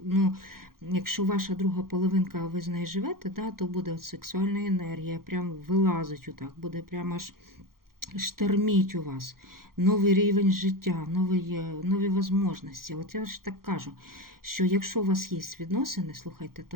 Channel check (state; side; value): late; left; 0.92 ms